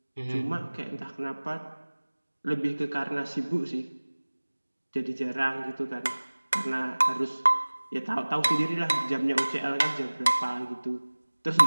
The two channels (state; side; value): inverted; both; correlation -1.00